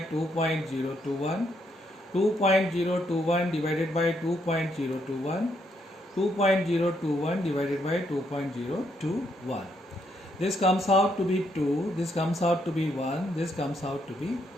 2.021, 2.021 divided by 2.021, 2.021 divided by 2.021. This comes out to be 2, this comes out to be 1, this comes out to be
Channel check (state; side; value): normal; both; correlation 0.75